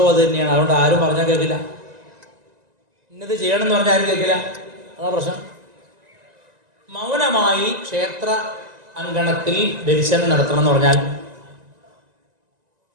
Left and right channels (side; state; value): left; late; 1.9 ms